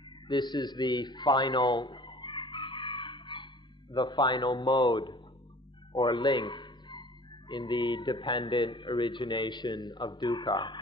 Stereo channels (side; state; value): both; normal; correlation 0.48